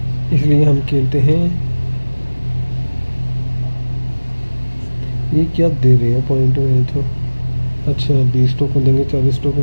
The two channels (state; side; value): inverted; both; correlation -1.00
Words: इसलिए हम खेलते हैं। ये क्या दे रहे हैं पॉइंट में तो? अच्छा 20 टोकन देंगे, 40 टोकन